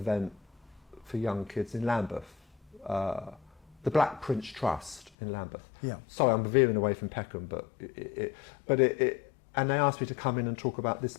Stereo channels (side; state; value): right; drops out; at 5.1 s